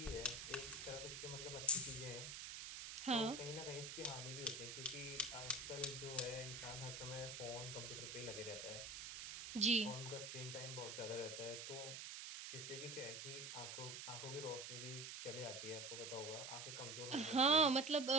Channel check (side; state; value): right; noise; hiss, 7 dB below the sound